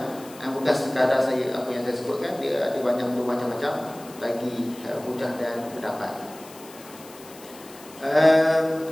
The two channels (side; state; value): left; noise; hiss, 20 dB below the sound